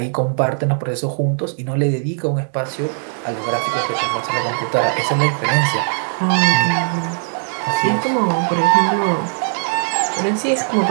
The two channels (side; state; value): left; silent; digital silence